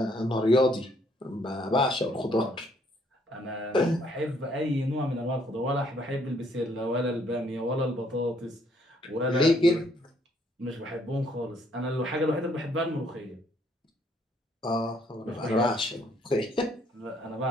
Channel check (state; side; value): normal; both; correlation 0.67